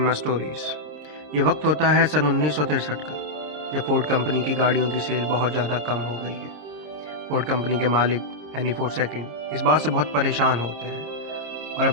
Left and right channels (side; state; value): left; late; 26 ms